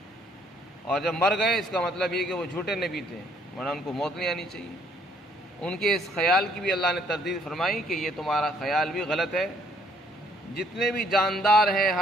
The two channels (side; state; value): both; normal; correlation 0.65